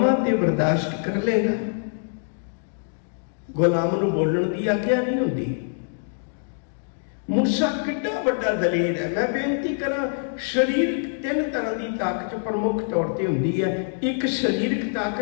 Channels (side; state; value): right; silent; digital silence